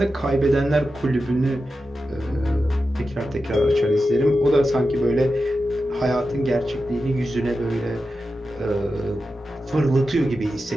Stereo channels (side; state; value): both; normal; correlation 0.91